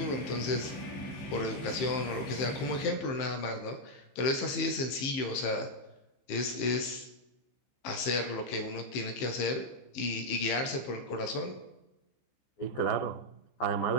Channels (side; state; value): right; late; 15 ms